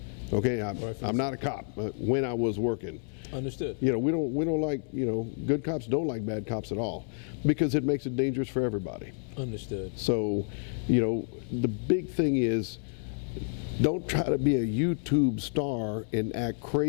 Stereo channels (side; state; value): right; silent; 58 dB below the other